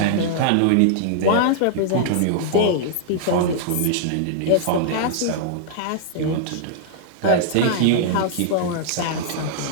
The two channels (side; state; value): both; different; correlation -0.01